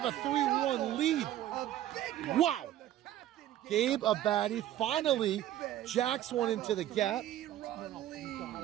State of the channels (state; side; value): quieter; left; 12.9 dB